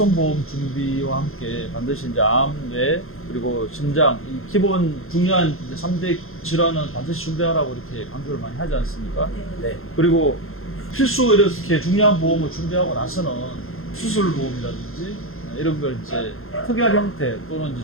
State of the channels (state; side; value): late; right; 0.61 ms